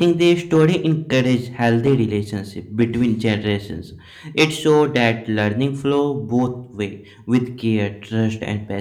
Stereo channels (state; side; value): identical; both; correlation 1.00